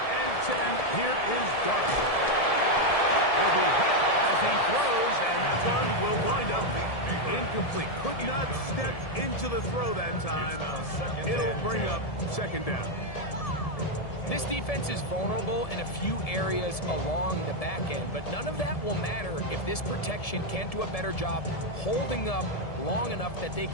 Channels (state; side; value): late; right; 1.7 ms